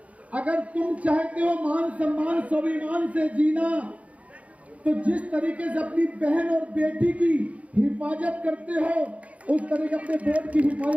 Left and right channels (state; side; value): late; left; 0.066 ms